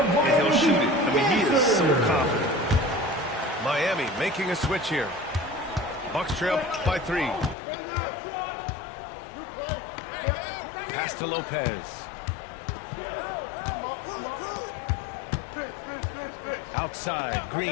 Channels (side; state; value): right; drops out; at 7.6 s